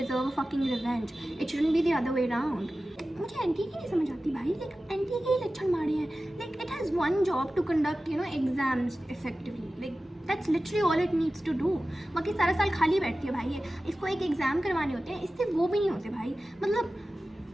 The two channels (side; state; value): both; normal; correlation 0.95